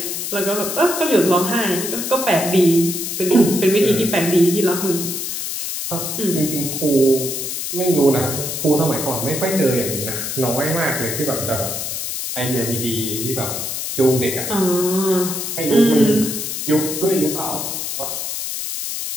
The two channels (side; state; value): left; noise; hiss, 4 dB below the sound